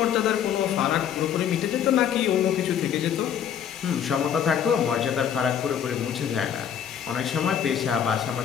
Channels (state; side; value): quieter; right; 8.8 dB